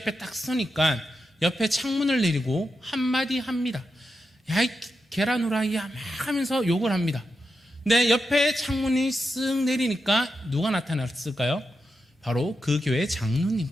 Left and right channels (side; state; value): both; normal; correlation 0.87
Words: 딱 서니까 옆에 창문을 내리고 한마디 합니다. 야, 이 계란 후라이야, 막 하면서 욕을 합니다. 근데 옆에 창문이 쓱 내리니까 누가 나타났을까요? 바로 그 교회